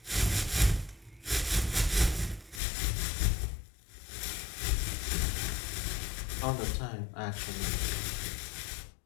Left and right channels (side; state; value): right; drops out; at 2.6 s